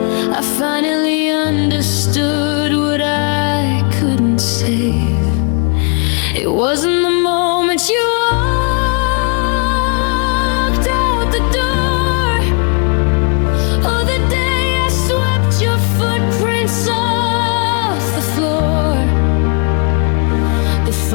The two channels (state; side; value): quieter; right; 38.2 dB